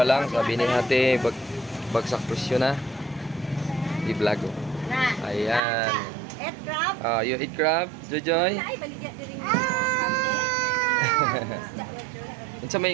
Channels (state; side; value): drops out; left; at 5.6 s